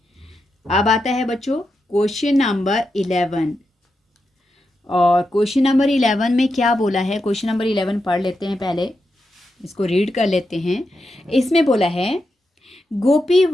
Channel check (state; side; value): normal; both; correlation 0.87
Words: अब आता है बच्चों क्वेश्चन नंबर 11। और क्वेश्चन नंबर 11 में क्या बोला है? क्वेश्चन नंबर 11 पढ़ लेते हैं, पहले इसको रीड कर लेते हैं। इसमें बोला है